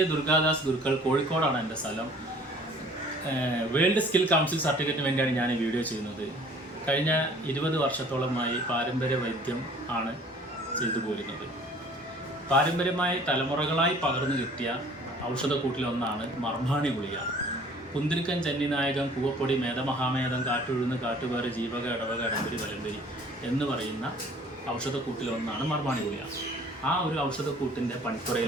ദുർഗാദാസ് ഗുരുക്കൾ, കോഴിക്കോടാണ് എൻ്റെ സ്ഥലം. വേൾഡ് സ്കിൽ കൗൺസിൽ സർട്ടിഫിക്കറ്റിന് വേണ്ടിയാണ് ഞാൻ ഈ വീഡിയോ ചെയ്യുന്നത്. കഴിഞ്ഞ 20 വർഷത്തോളമായി പാരമ്പര്യ വൈദ്യം ആണ് ചെയ്തു പോരുന്നത്. പാരമ്പര്യമായി തലമുറകളായി പകർന്നു കിട്ടിയ ഔഷധക്കൂട്ടിലൊന്നാണ് മർമ്മാണി ഗുളിക. കുന്തിരിക്കൻ, ചെന്നിനായകം, കൂവപ്പൊടി, മേധമഹാമേധം, കാട്ടുഴുന്ന്, കാട്ടുപേറ്, ജീവക, ഇടവക, ഇടമ്പരി, വലമ്പരി എന്ന് പറയുന്ന ഔഷധക്കൂട്ടിലൊന്നാണ് മർമ്മാണി ഗുളിക. ആ ഒരു ഔഷധക്കൂട്ടിൻ്റെ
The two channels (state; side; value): normal; both; correlation 0.52